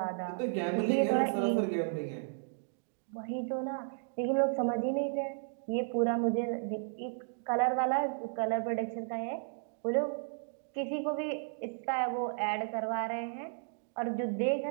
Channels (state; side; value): silent; left; digital silence